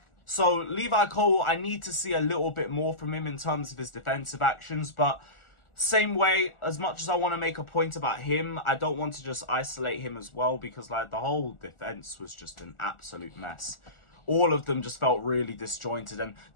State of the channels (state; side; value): late; right; 1.4 ms